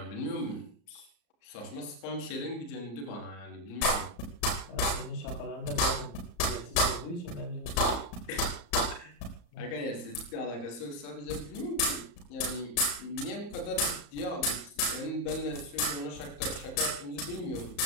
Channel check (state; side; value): late; right; 34 ms